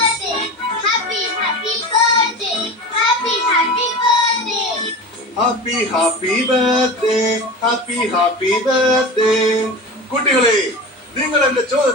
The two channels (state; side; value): normal; both; correlation 0.30